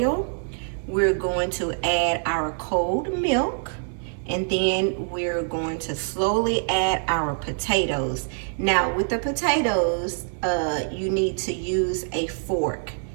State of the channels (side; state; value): left; silent; 62 dB below the other